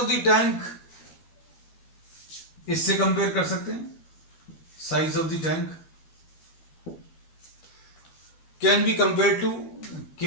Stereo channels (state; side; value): late; right; 13 ms